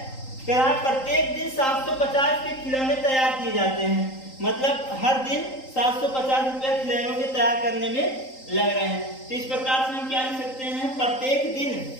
कह रहा है प्रत्येक दिन 750 के खिलौने तैयार किए जाते हैं। मतलब हर दिन 750 रुपए खिलौनों के तैयार करने में लग रहे हैं। तो इस प्रकार से हम क्या लिख सकते हैं, प्रत्येक दिन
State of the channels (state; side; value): late; right; 3.8 ms